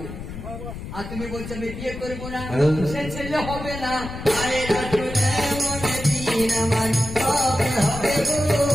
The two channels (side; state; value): left; noise; rumble, 10 dB below the sound